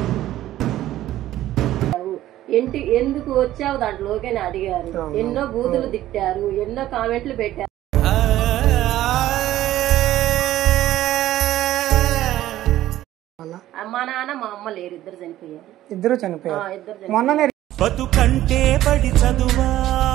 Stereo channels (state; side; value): quieter; left; 14.0 dB